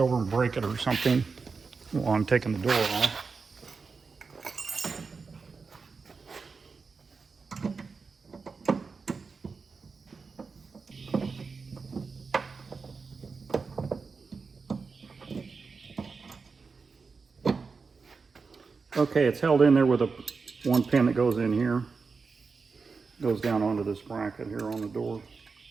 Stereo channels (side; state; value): left; quieter; 4.8 dB